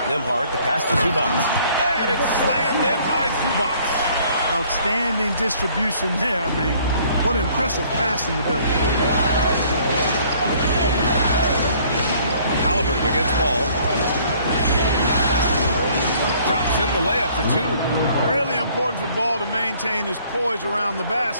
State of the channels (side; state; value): both; inverted; correlation -0.59